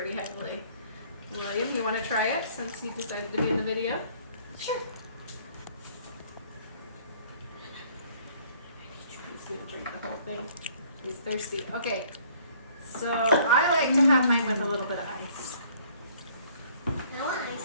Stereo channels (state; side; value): inverted; both; correlation -0.59